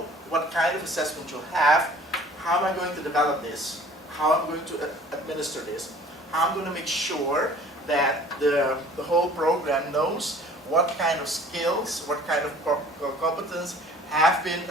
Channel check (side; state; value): both; normal; correlation 0.50